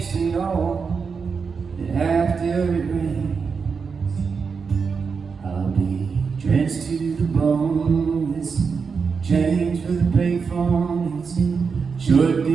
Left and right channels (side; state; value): left; quieter; 5.5 dB